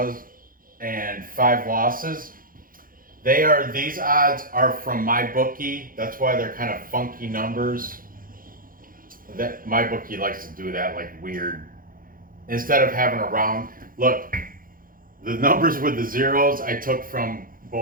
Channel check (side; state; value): left; late; 0.41 ms